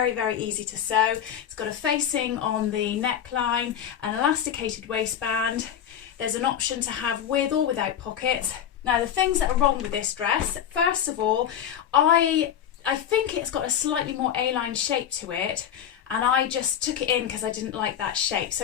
easy to sew. It's got a facing on the neckline, an elasticated waistband. There's an option to have with or without pockets. Now the things that are wrong with this dress, first of all, I think it's got a slightly more A-line shape to it, and I just took it in because I didn't like that shape.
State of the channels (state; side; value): quieter; right; 9.5 dB